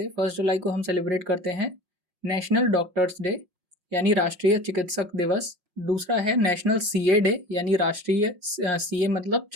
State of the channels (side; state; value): left; late; 5.5 ms